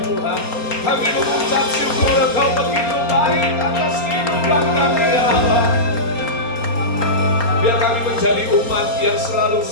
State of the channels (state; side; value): late; right; 4.3 ms